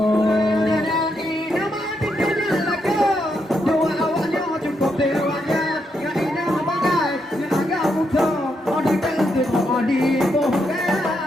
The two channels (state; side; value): normal; both; correlation 0.80